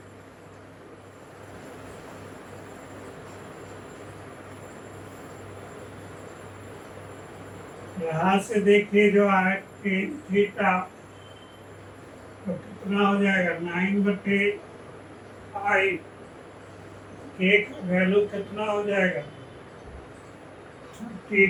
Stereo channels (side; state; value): both; identical; correlation 1.00